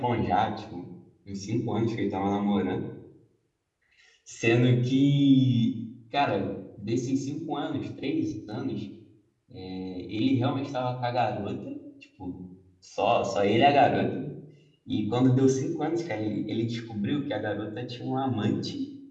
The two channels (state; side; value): identical; both; correlation 1.00